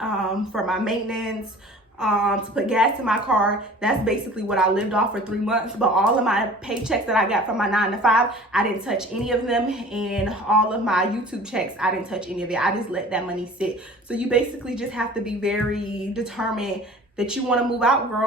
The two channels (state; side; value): normal; both; correlation 0.45